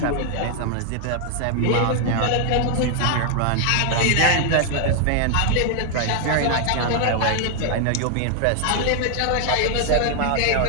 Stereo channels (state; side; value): different; both; correlation 0.00